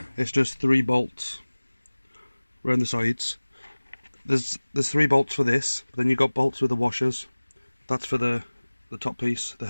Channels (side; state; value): both; inverted; correlation -1.00